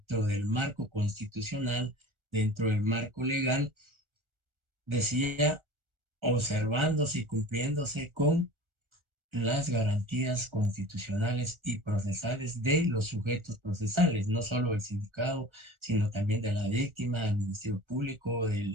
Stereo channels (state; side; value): late; left; 1.4 ms